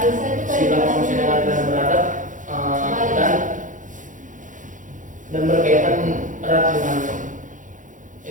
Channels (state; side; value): late; left; 0.37 ms